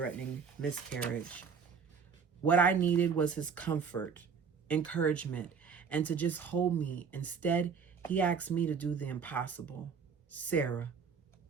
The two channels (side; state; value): left; quieter; 6.1 dB